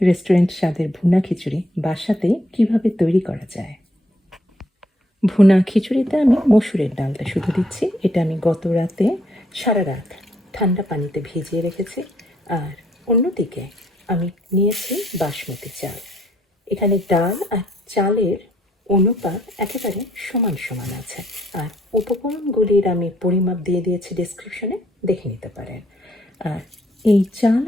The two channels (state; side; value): normal; both; correlation 0.69